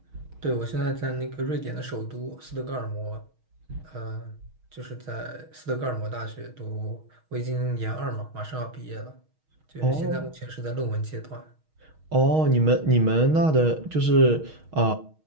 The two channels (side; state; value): left; late; 6.4 ms